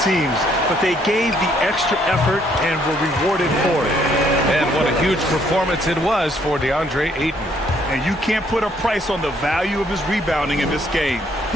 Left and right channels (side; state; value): both; normal; correlation 0.67